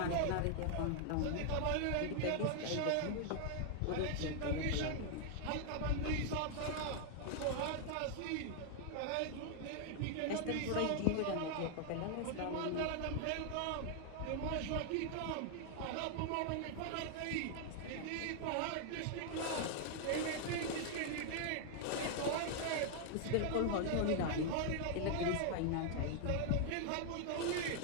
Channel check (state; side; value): different; both; correlation 0.00